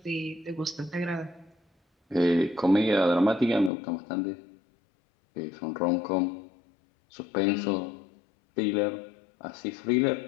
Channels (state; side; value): drops out; right; at 3.7 s